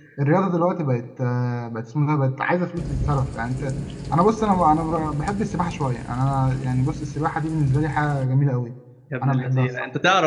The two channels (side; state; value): both; identical; correlation 1.00